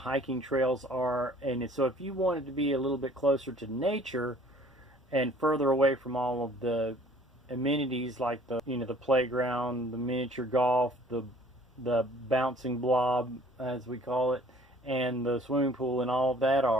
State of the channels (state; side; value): normal; both; correlation 0.54